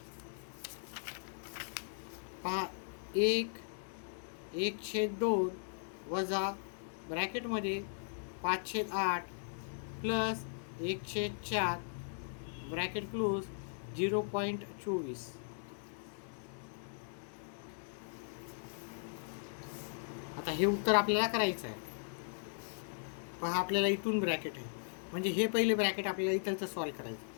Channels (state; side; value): silent; right; 52 dB below the other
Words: पहा, 1/2 वजा ब्रॅकेटमध्ये 5/8 प्लस 1/4 ब्रॅकेट क्लोज 0.24. आता हे उत्तर आपल्याला करायचं आहे. पहा, आपल्याला इथून ब्रॅकेट आहे, म्हणजे हे पहिले ब्रॅकेट आपल्याला इथलचं सॉल्व करायचं.